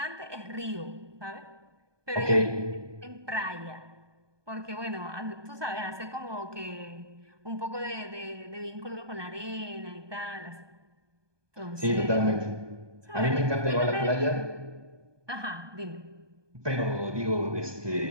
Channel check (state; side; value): late; left; 1.2 ms